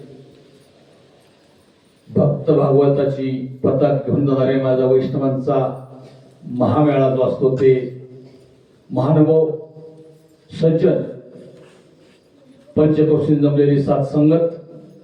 भक्त भागवताची पताक घेऊन जाणारे माझा वैष्णवांचा महामेळा जो असतो ते महानुभाव, सज्जन, पंचकोशी जमलेली सात संगत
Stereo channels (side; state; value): both; identical; correlation 1.00